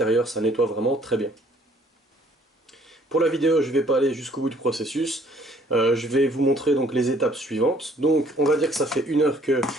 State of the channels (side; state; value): both; normal; correlation 0.60